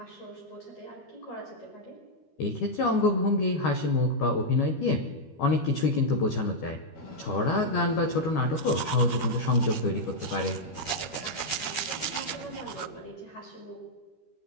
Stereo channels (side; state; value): right; late; 13 ms